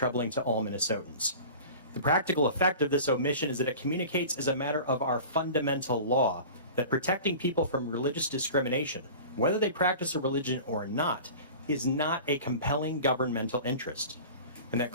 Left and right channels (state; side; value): inverted; both; correlation -0.38